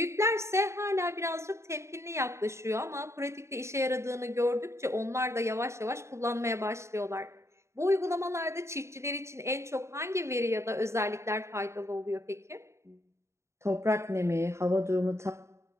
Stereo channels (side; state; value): left; late; 0.14 ms